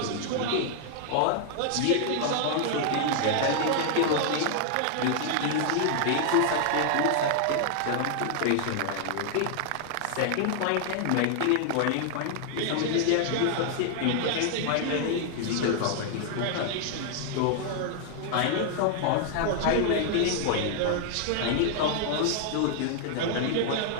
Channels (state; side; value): different; both; correlation 0.00